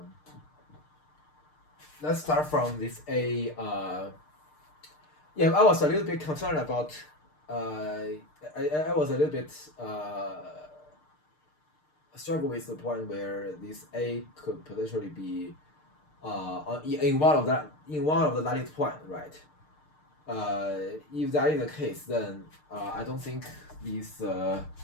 Let's start from this A. Yeah, I was a little bit concerned about. I was a little bit struggle with the point where this A could potentially be in one of the lattice point, right? If that is the case, then I don't think this.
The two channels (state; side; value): late; right; 6.6 ms